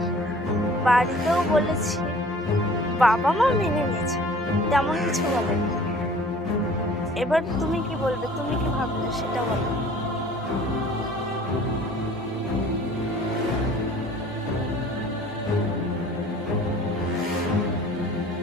বাড়িতেও বলেছি, বাবা মা মেনে নিয়েছে, তেমন কিছু বলেনি। এবার তুমি কি বলবে, তুমি কি ভাবলে সেটা বলো।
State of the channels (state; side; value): normal; both; correlation 0.49